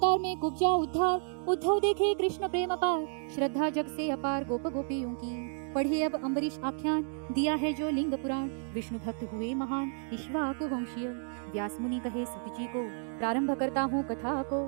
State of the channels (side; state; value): left; silent; 57 dB below the other